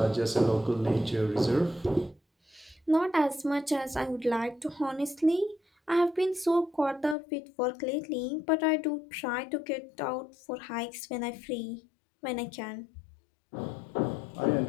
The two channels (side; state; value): right; drops out; at 7.2 s